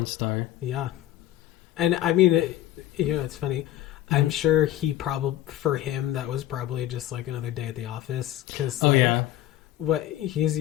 star. Yeah. And I mean, it's funny. I'm sure for him, that was probably just like another day at the office. Cause what he's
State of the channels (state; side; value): quieter; right; 13.6 dB